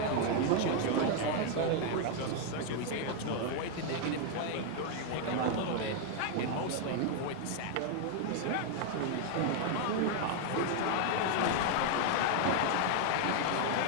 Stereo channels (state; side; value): different; both; correlation 0.00